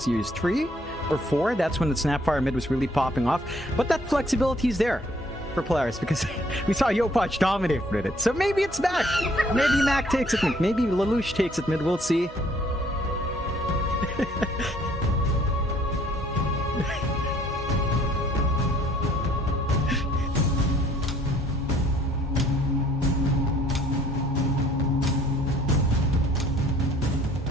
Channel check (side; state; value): both; normal; correlation 0.61